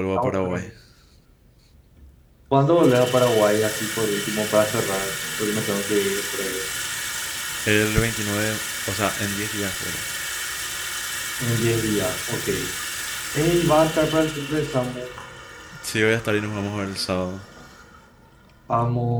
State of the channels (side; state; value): both; identical; correlation 1.00